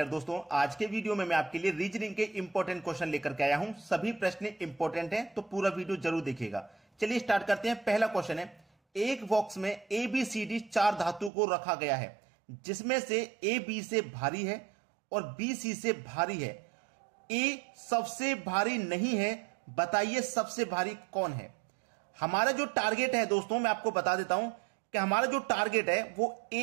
दोस्तों, आज के वीडियो में मैं आपके लिए रीजनिंग के इंपॉर्टेंट क्वेश्चन लेकर के आया हूं। सभी प्रश्न इंपॉर्टेंट हैं, तो पूरा वीडियो जरूर देखिएगा। चलिए स्टार्ट करते हैं। पहला क्वेश्चन है, एक बॉक्स में ए बी सी डी 4 धातु को रखा गया है, जिसमें से ए बी से भारी है और बी सी से भारी है। ए सबसे भारी नहीं है, बताइए सबसे भारी कौन है। हमारा जो टारगेट है दोस्तों, मैं आपको बता देता हूं कि हमारा जो टारगेट है वो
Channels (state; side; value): drops out; left; at 11.3 s